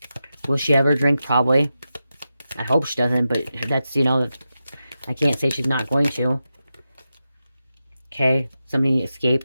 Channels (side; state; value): both; inverted; correlation -0.90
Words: Will she ever drink? Probably. I hope she doesn't, but that's, I can't say she's not going to. Okay, somebody